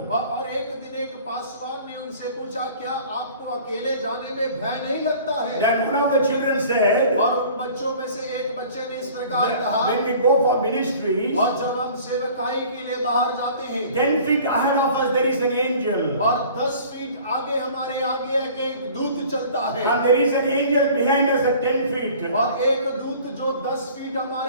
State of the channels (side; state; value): both; inverted; correlation -0.48